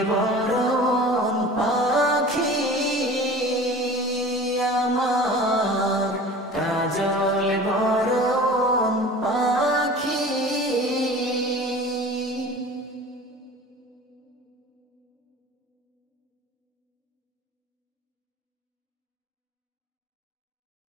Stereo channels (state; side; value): normal; both; correlation 0.40